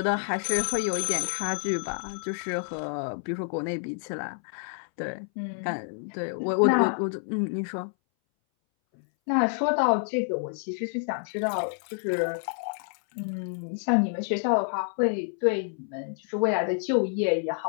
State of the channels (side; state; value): right; silent; 59 dB below the other